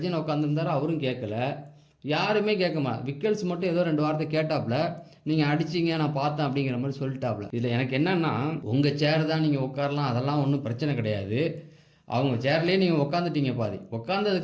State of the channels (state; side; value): identical; both; correlation 1.00